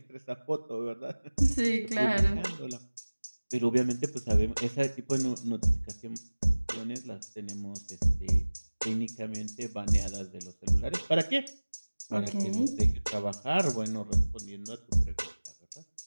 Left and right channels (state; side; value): inverted; both; correlation -1.00